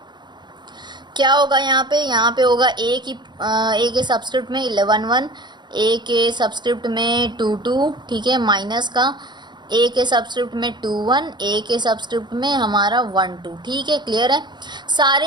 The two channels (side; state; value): left; late; 0.21 ms